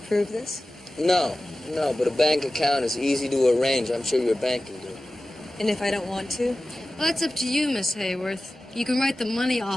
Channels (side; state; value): both; normal; correlation 0.95